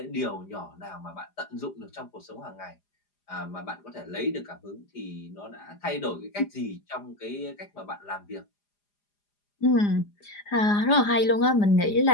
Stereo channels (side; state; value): right; late; 4.9 ms